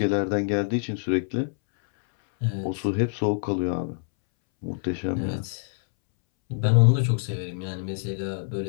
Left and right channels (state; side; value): silent; right; 61 dB below the other